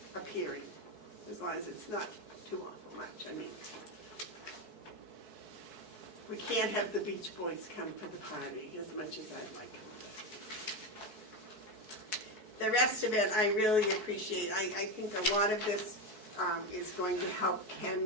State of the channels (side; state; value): left; late; 4.6 ms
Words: appearing, as long as it's not too awful much. I mean, we can't have the Beach Boys come for the party as much as I'd like them to. The rest of it, I really appreciate. I think a lot of this is going to help